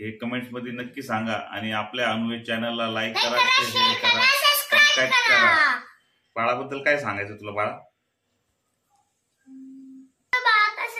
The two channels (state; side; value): identical; both; correlation 1.00